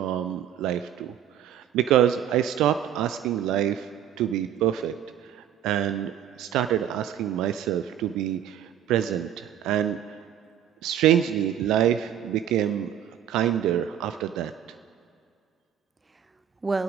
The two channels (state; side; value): quieter; left; 10.1 dB